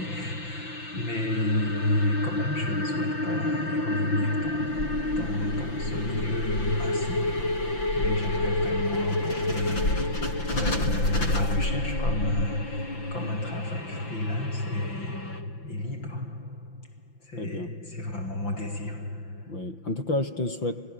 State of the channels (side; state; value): right; late; 5.9 ms